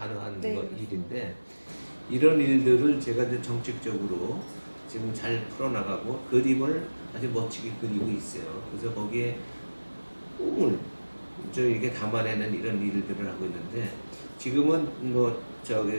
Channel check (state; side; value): inverted; both; correlation -1.00